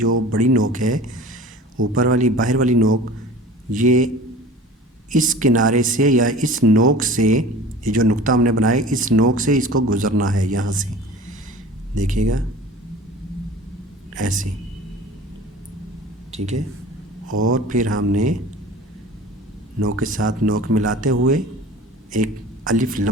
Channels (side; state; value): both; normal; correlation 0.41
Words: बड़ी नोक है, ऊपर वाली बाहर वाली नोक, ये इस किनारे से या इस नोक से, ये जो नुक्ता हमने बनाया इस नोक से इसको गुज़रना है यहाँ से, देखिएगा ऐसे, ठीक है। और फिर हमने नोक के साथ नोक मिलाते हुए एक अलिफ,